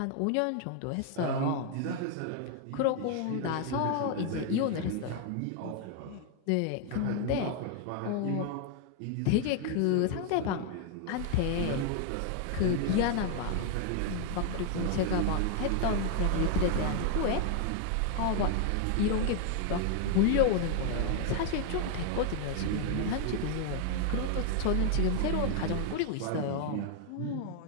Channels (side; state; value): both; different; correlation 0.00